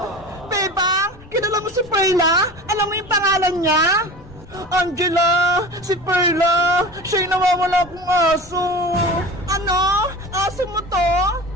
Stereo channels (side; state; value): left; noise; rumble, 22 dB below the sound